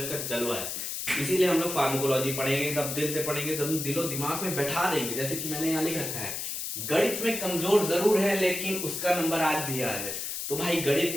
का जलवा है। इसीलिए हम लोग फार्माकोलॉजी पढ़ेंगे, तब दिल से पढ़ेंगे, तब दिलो दिमाग में बैठा देंगे। जैसे कि मैंने यहाँ लिख रखा है, गणित में कमजोर जरूर है लेकिन उसका नंबर आज भी याद है। तो भाई गणित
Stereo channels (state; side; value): noise; left; hiss, 4 dB below the sound